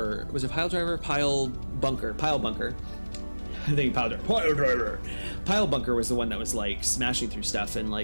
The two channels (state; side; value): inverted; both; correlation -1.00